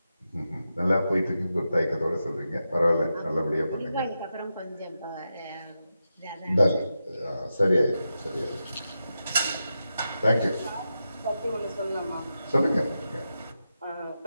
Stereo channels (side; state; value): both; inverted; correlation -0.89